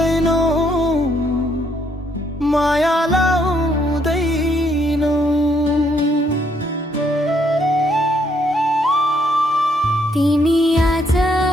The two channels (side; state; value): both; normal; correlation 0.71